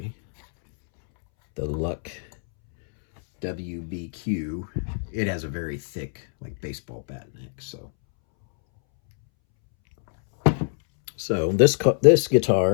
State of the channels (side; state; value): right; silent; 63 dB below the other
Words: the Luck WBQ, it has a very thick, like baseball bat neck. So this